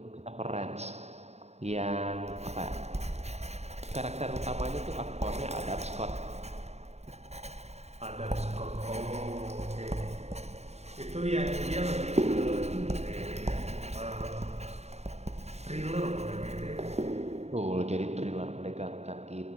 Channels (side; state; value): left; late; 0.32 ms